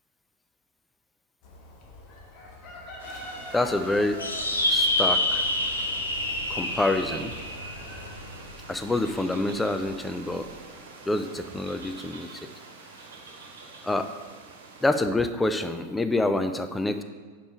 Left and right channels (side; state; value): both; normal; correlation 0.41